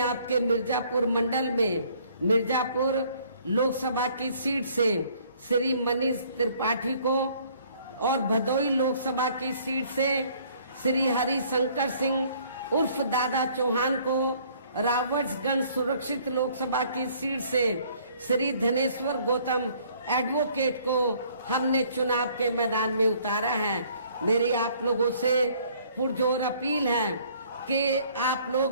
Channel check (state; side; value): inverted; both; correlation -0.60